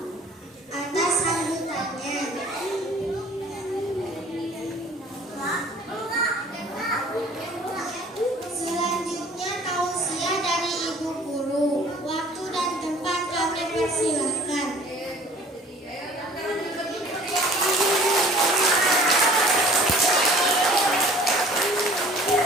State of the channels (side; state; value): both; normal; correlation 0.50